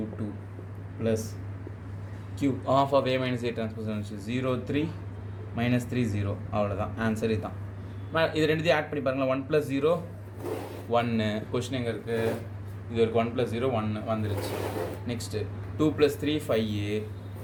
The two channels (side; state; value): both; identical; correlation 1.00